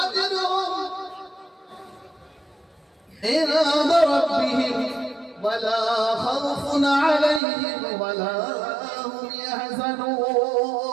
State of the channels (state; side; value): drops out; left; at 7.4 s